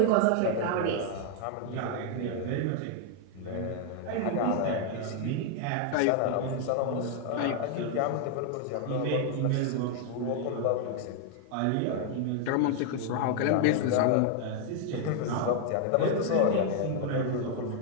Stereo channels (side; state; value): both; different; correlation 0.00